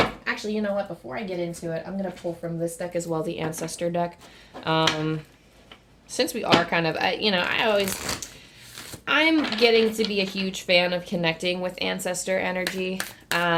actually, you know what? Before I get into it, I'm going to pull from this deck as well, the Ancestor deck. Since we are kind of, I'm getting to be a huge fan of connecting with Ancestor energy.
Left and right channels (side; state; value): both; identical; correlation 1.00